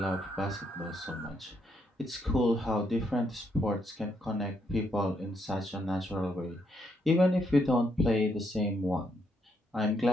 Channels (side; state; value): both; normal; correlation 0.76